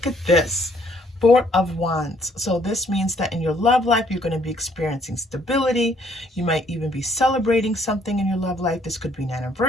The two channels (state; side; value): normal; both; correlation 0.65